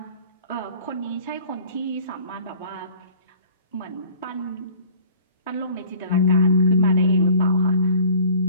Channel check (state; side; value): inverted; both; correlation -0.48